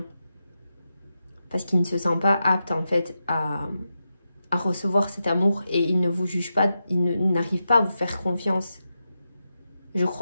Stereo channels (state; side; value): inverted; both; correlation -0.89